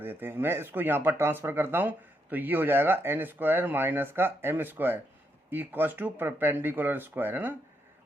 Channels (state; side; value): normal; both; correlation 0.79